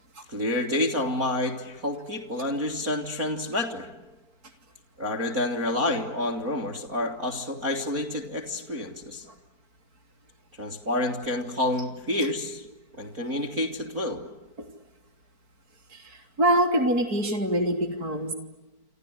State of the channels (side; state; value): left; late; 4.4 ms